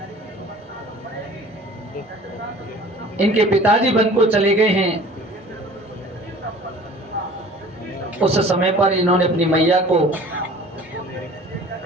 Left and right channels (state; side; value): normal; both; correlation 0.46